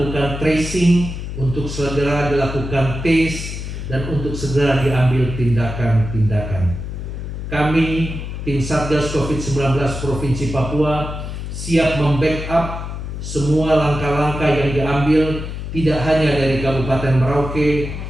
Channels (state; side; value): noise; left; hum, 7 dB below the sound